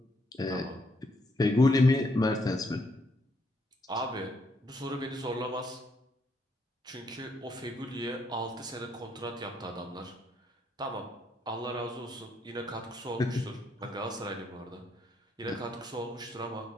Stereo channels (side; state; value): both; normal; correlation 0.73